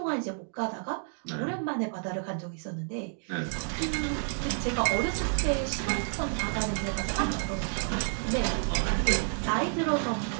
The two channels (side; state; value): left; silent; 58 dB below the other